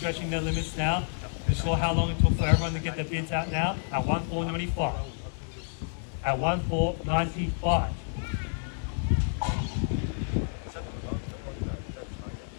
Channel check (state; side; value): silent; right; digital silence